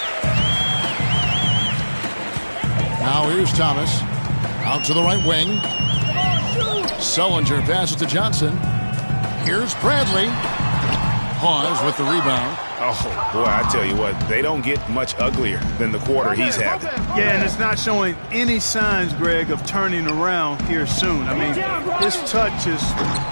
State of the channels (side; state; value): both; inverted; correlation -1.00